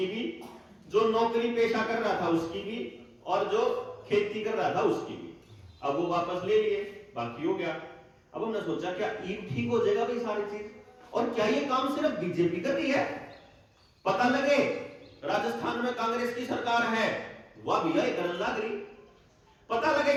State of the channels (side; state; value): both; identical; correlation 1.00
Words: भी, जो नौकरी पेशा कर रहा था उसकी भी, और जो खेती कर रहा था उसकी भी। अब वो वापस ले लिए, बाकी हो गया। अब हमने सोचा क्या ईब ठीक हो जाएगा भाई सारी चीज? और क्या ये काम सिर्फ बीजेपी कर रही है? पता लगे राजस्थान में कांग्रेस की सरकार है, वह भी करन लग रही। पता लगे